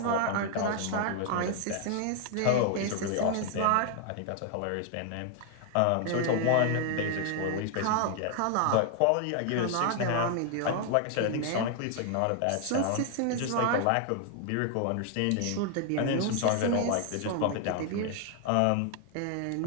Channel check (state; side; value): different; both; correlation 0.00